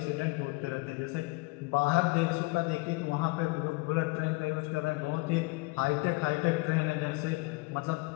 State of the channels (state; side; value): quieter; right; 25.1 dB